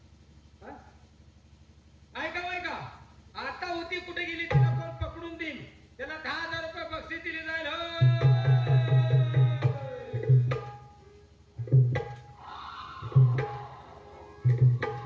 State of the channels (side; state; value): both; identical; correlation 1.00